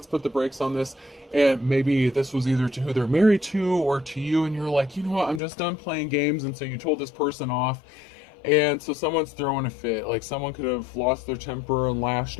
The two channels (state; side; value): drops out; right; at 5.4 s